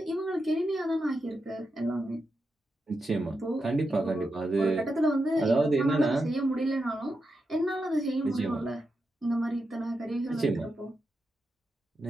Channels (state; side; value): normal; both; correlation 0.87